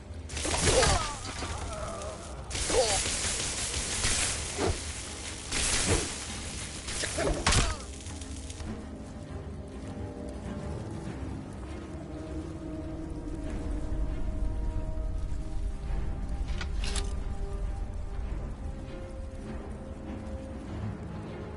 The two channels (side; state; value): both; identical; correlation 1.00